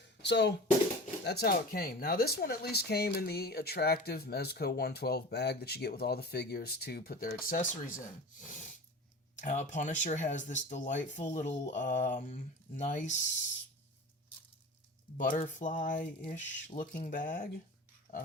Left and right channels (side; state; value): both; normal; correlation 0.35